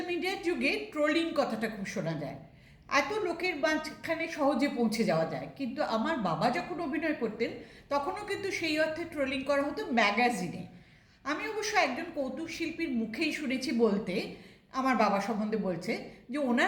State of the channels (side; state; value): both; identical; correlation 1.00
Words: মিডিয়ার যুগে ট্রোলিং কথাটা খুব শোনা যায়। এত লোকের মাঝখানে সহজে পৌঁছে যাওয়া যায়, কিন্তু আমার বাবা যখন অভিনয় করতেন তখনও কিন্তু সেই অর্থে ট্রোলিং করা হতো ম্যাগাজিনে। আমি অবশ্য একজন কৌতুক শিল্পীর মুখেই শুনেছি বলতে, আমার বাবা সম্বন্ধে বলছে যে